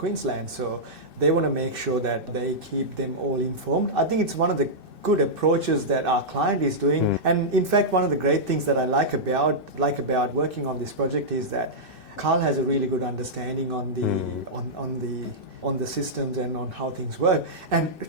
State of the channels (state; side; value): late; left; 2.6 ms